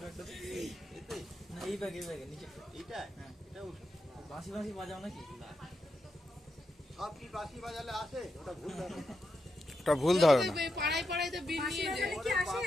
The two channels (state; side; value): normal; both; correlation 0.85